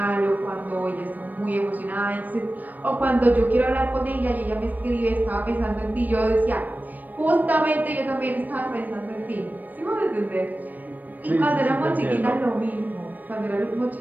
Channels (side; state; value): left; late; 0.085 ms